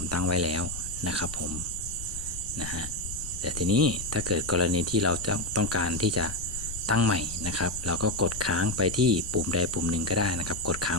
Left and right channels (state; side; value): noise; left; rumble, 11 dB below the sound